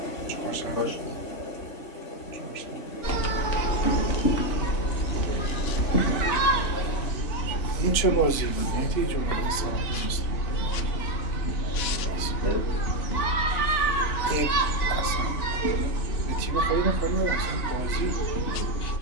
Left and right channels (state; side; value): late; right; 3.5 ms